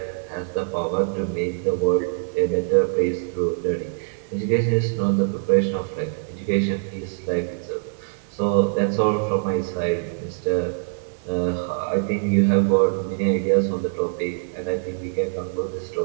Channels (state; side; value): silent; left; 63 dB below the other